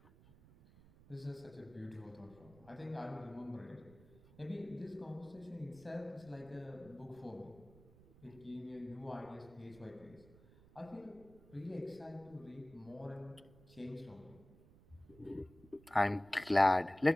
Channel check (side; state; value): right; noise; rumble, 23 dB below the sound